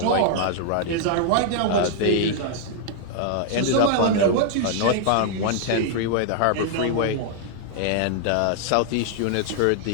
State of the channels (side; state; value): both; different; correlation -0.01